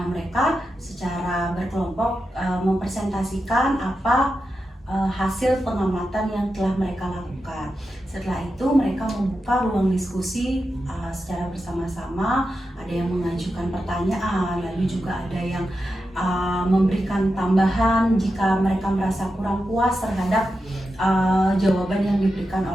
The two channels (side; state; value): both; normal; correlation 0.89